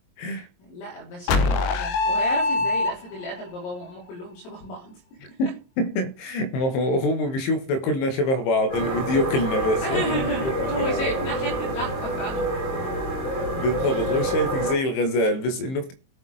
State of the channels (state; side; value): late; right; 23 ms